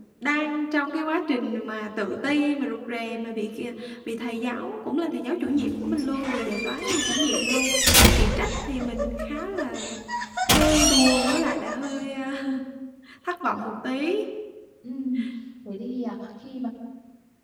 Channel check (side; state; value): both; identical; correlation 1.00